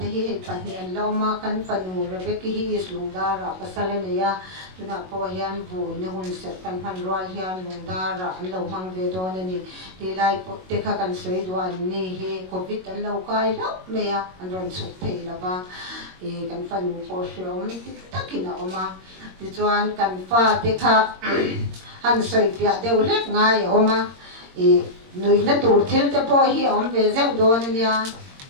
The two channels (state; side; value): late; left; 22 ms